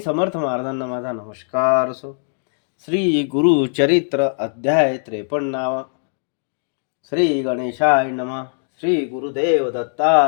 महाराजांना माझा नमस्कार असो. श्री गुरुचरित्र अध्याय 53. श्री गणेशाय नमः. श्री गुरुदेव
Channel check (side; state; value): right; silent; digital silence